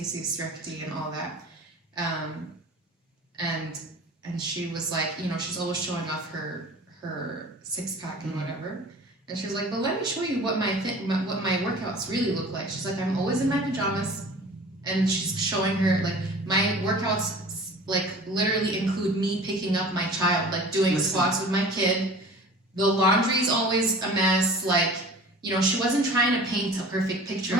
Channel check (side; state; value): both; normal; correlation 0.42